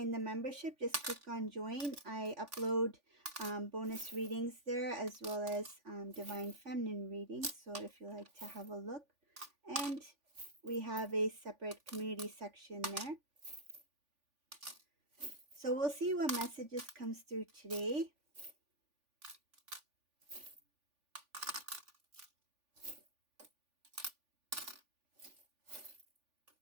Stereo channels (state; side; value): late; left; 3.5 ms